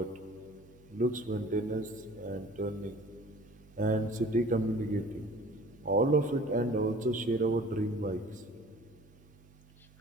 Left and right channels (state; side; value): noise; right; hum, 25 dB below the sound